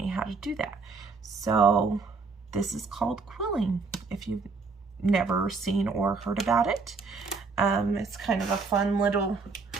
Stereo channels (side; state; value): left; quieter; 4.5 dB